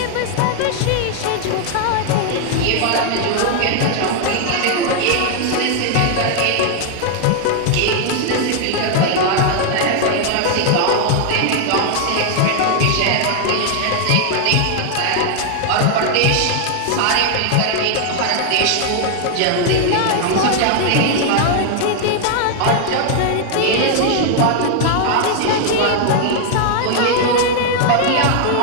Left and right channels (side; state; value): both; different; correlation 0.00